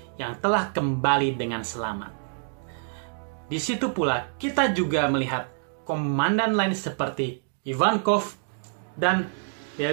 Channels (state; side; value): silent; left; digital silence